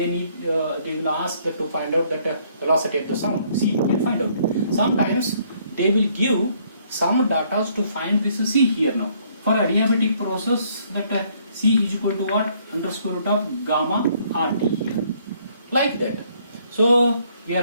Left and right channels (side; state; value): both; inverted; correlation -0.66